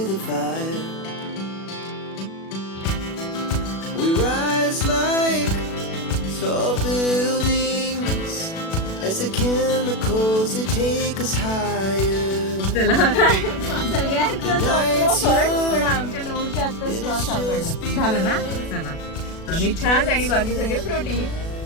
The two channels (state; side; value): late; right; 37 ms